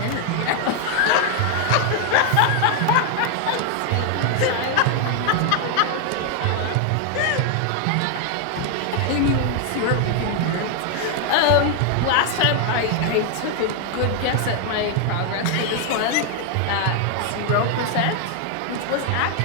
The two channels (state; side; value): different; both; correlation 0.00